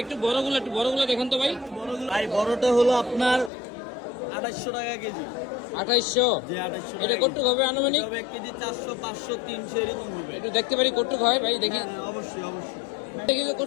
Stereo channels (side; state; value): right; drops out; at 3.5 s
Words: একটু বড়গুলো দেখুন তো ভাই। ভাই বড়টা হলো আপনার 2800 টাকা কেজি। 2800। যে 2800 এটা টাকা কটুক হবে আনুমানিক? কেজি। 1 কেজি 400, 500, 300 এরকম হবে। একটু দেখতে পারি কটুক হয় ভাই? দেখি হ্যাঁ, অবশ্যই অবশ্যই। দেখি তো